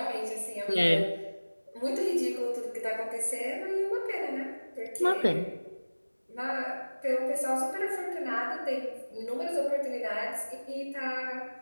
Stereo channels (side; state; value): both; inverted; correlation -1.00